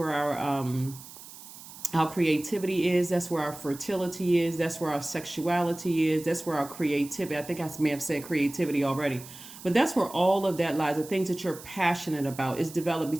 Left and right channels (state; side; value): noise; right; hiss, 16 dB below the sound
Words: our creativity is. That's where our fertility is. That's where our sexuality is. That's where our creativity. I think I may have said creativity already. But that's where all of that lies. The things that you're passionate about is developed